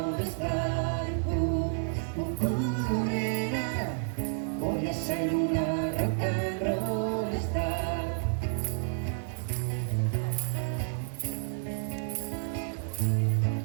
star. Nena, voy a ser una rock and roll star.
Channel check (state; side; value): silent; left; 58 dB below the other